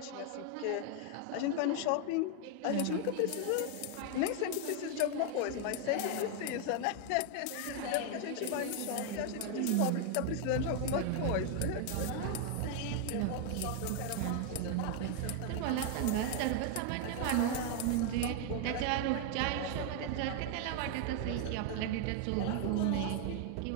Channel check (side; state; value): both; different; correlation 0.00